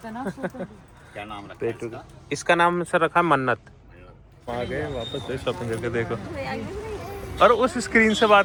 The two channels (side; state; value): both; identical; correlation 1.00